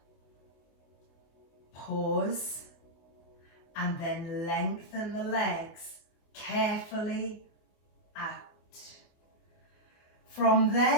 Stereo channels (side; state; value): right; late; 24 ms